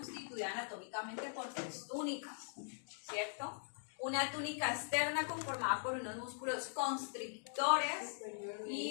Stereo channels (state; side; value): silent; right; digital silence